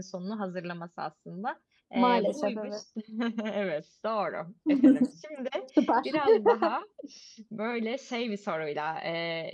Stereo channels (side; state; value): both; identical; correlation 1.00